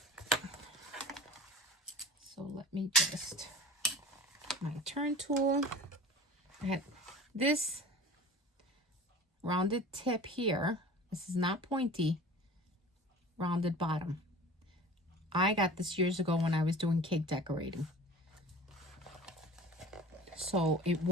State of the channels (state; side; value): normal; both; correlation 0.39